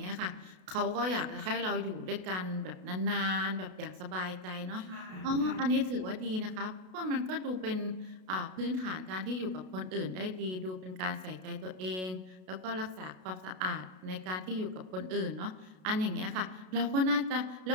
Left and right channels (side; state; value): left; late; 32 ms